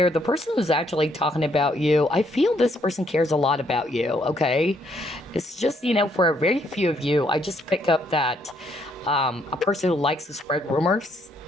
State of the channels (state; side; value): normal; both; correlation 0.71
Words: The person who's actually talking about you, I feel this person cares a lot about you, okay? It's just, you know, for a very few of you, I just pick up that a person who likes to spread rumors